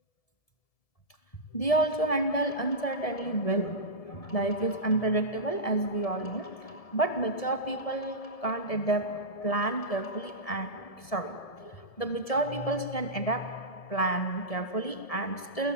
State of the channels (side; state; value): right; late; 1.7 ms